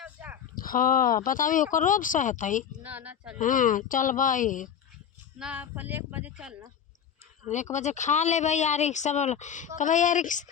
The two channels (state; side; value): quieter; right; 8.5 dB